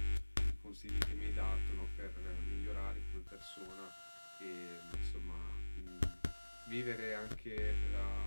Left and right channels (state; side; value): inverted; both; correlation -1.00